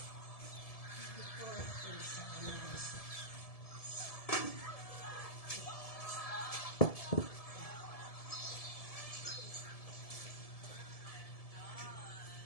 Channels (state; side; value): late; right; 1.7 ms